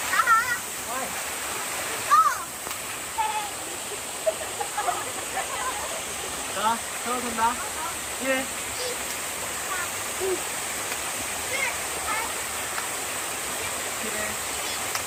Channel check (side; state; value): both; identical; correlation 1.00